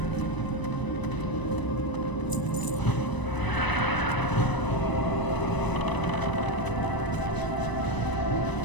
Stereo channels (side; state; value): right; late; 1.0 ms